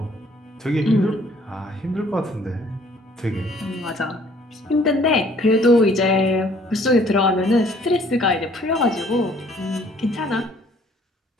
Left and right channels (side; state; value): both; normal; correlation 0.59